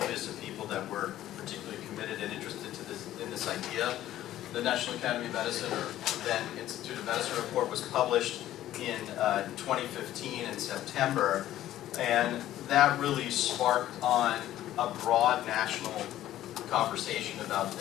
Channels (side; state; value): right; quieter; 13.3 dB